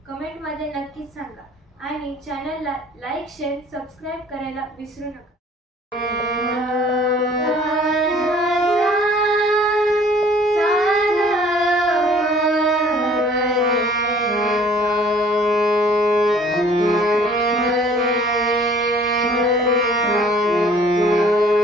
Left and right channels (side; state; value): both; normal; correlation 0.54